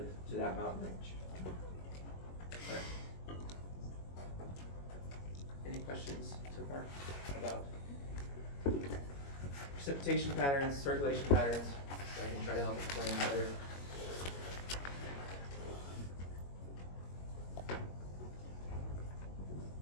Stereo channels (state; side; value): late; right; 21 ms